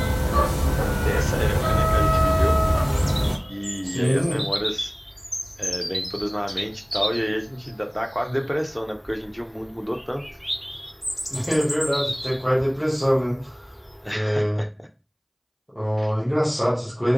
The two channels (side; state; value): both; identical; correlation 1.00